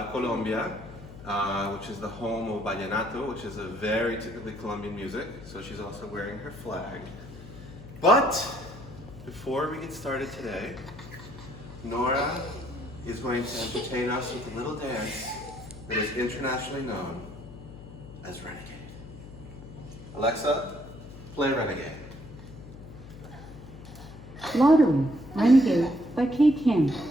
Colombia, which is the home of vallenato, which is a very typically Colombian music. So she's also wearing her flag. But before we get started today, Nora is going to entertain us with a little dance that is internationally known as Renegade. Alexa, play Renegade. Lottery, Renegade by Kate Kim,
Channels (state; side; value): noise; left; hum, 15 dB below the sound